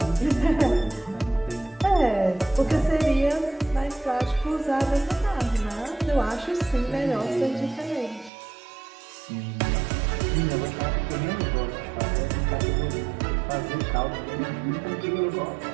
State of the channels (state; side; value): drops out; left; at 8.3 s